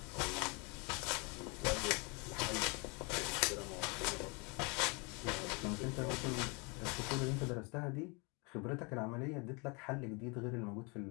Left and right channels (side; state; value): right; quieter; 30.6 dB